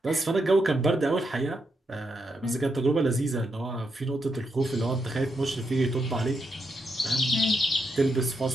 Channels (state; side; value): normal; both; correlation 0.81